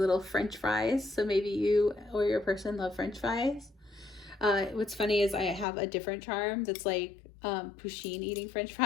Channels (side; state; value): right; drops out; at 5.7 s